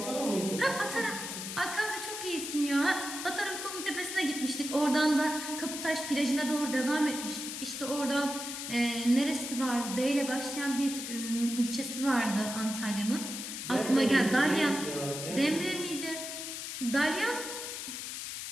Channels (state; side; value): noise; left; hiss, 6 dB below the sound